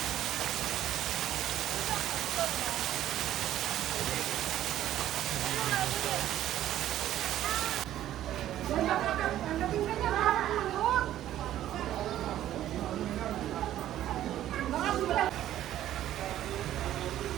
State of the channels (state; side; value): quieter; left; 12.5 dB